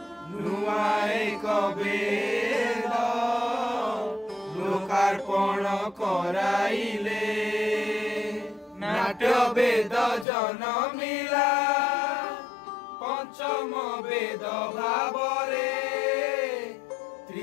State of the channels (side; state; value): right; drops out; at 10.2 s